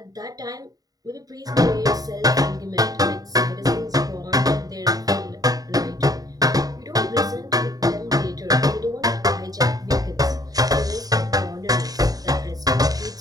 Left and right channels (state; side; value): late; left; 0.18 ms